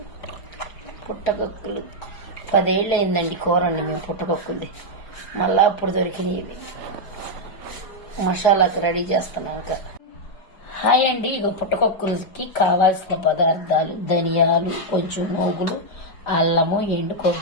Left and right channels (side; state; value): right; late; 4.9 ms